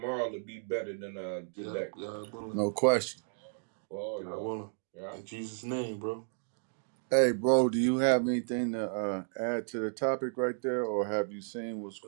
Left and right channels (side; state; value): left; silent; digital silence